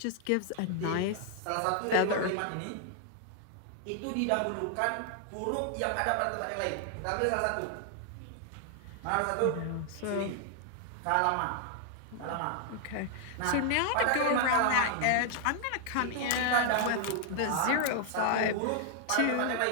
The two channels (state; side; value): different; both; correlation 0.00